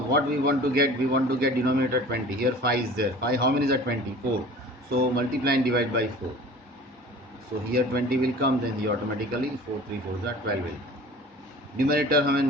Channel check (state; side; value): normal; both; correlation 0.43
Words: we want to get? We want to get denominator 20. Here 5 is there. 5 how many is that? 20? 4. So multiply and divide by 4. So here 20 will come, then here automatically 4 3 4 is 12 will. Numerator हमें